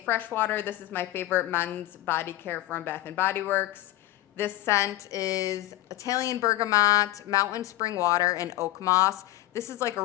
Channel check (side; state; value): right; quieter; 16.3 dB